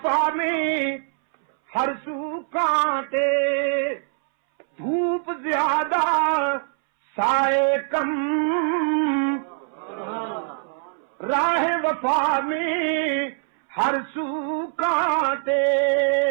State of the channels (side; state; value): left; silent; 62 dB below the other